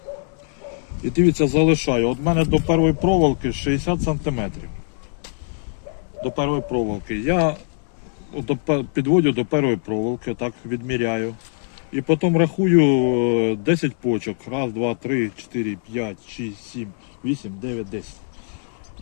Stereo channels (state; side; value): silent; right; 64 dB below the other